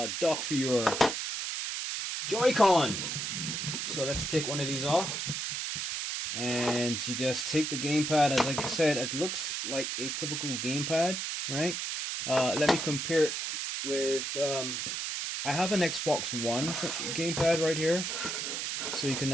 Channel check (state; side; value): noise; right; hiss, 3 dB below the sound